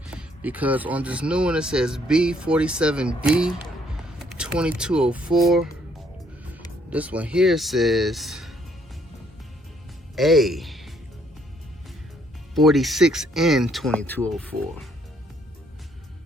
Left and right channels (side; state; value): both; normal; correlation 0.67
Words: because on this new one it says B47D 2204. This one here says A 46N 2204.